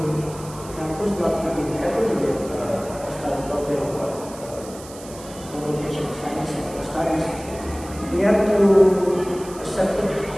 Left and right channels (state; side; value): noise; right; hiss, 17 dB below the sound